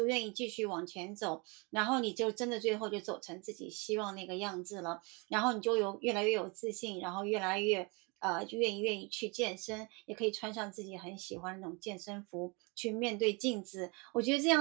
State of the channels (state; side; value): quieter; left; 30.0 dB